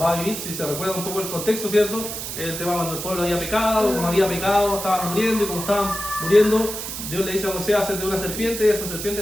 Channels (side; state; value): right; noise; hiss, 6 dB below the sound